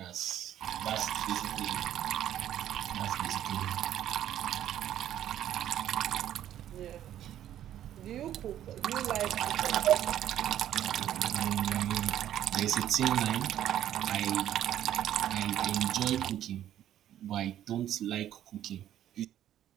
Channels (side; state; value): left; quieter; 11.5 dB